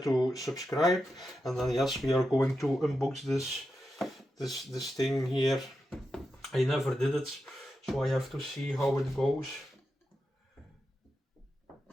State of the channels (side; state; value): both; normal; correlation 0.88